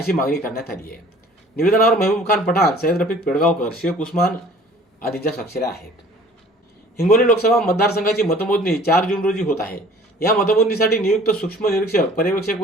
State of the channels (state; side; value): normal; both; correlation 0.50